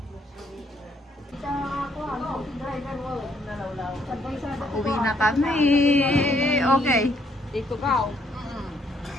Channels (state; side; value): normal; both; correlation 0.69